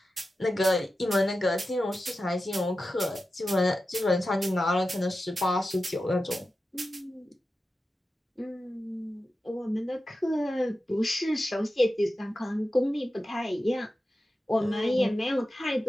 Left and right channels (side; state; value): both; normal; correlation 0.92